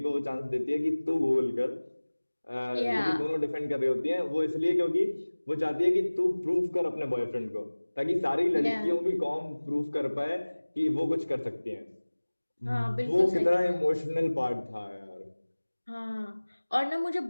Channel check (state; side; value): inverted; both; correlation -1.00